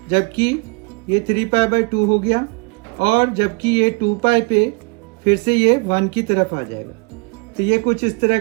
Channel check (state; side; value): quieter; left; 31.8 dB